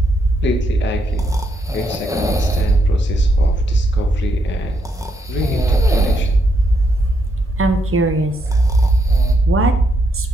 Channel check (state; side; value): normal; both; correlation 0.77